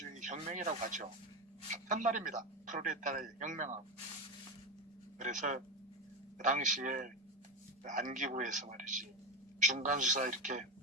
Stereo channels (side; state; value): both; normal; correlation 0.15